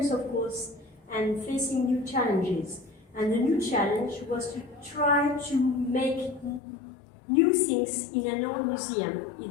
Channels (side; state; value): right; drops out; at 6.6 s